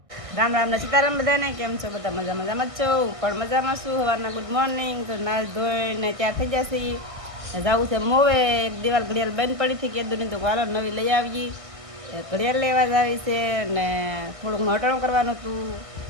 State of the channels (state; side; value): late; left; 1.6 ms